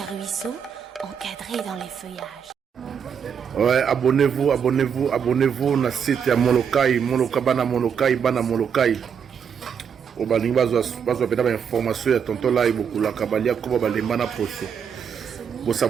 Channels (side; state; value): left; quieter; 7.3 dB